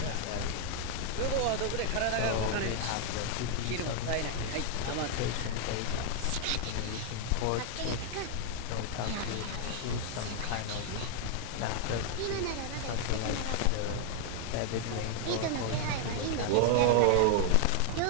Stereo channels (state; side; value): different; both; correlation 0.00